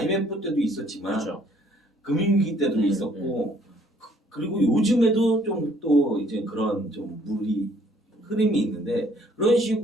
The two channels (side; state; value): both; normal; correlation 0.62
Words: 때도 있었지만 그렇죠. 금융위기 때도 있었고 그리고 요즘에도 좀 또 이제 그런 좀 흐름이 있는데 그런